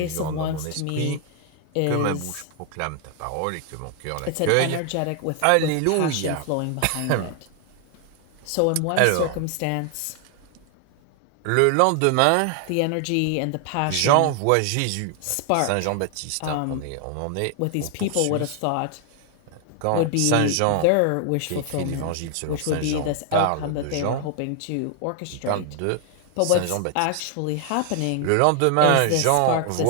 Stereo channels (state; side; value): different; both; correlation 0.00